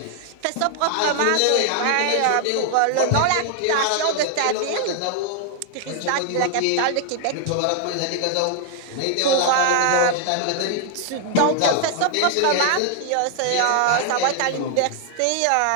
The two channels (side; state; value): both; different; correlation 0.00